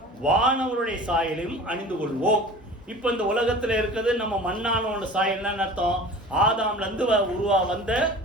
வானவருடைய சாயலையும் அணிந்து கொள்வோம். இப்ப இந்த உலகத்துல இருக்கிறது நம்ம மண்ணானவனோட சாயல்னு அர்த்தம். ஆதாம்ல இருந்து வந்த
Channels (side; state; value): both; normal; correlation 0.40